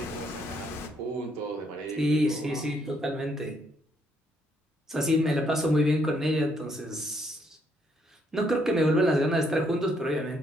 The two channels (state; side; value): normal; both; correlation 0.72